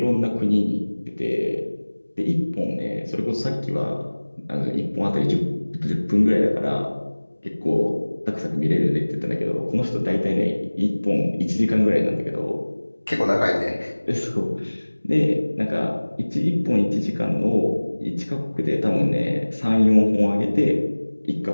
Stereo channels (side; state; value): both; inverted; correlation -1.00